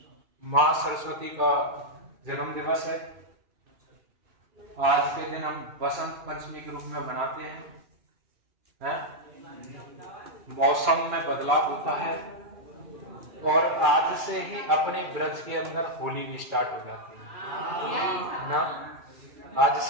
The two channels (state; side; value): late; left; 2.3 ms